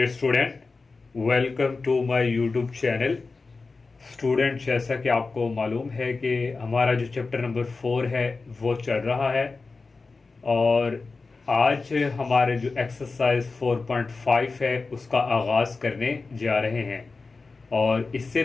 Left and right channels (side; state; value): right; quieter; 4.0 dB